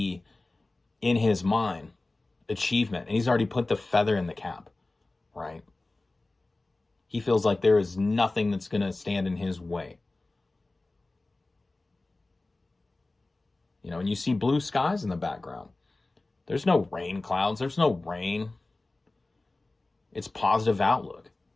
in his mind achievement, and he's already put the feather in the cap, right? He feels like there is nothing that's going to stand in his way. And you see blue skies in the background. There's no rain clouds. There's no rain. It's positive outlook.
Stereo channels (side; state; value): right; quieter; 3.1 dB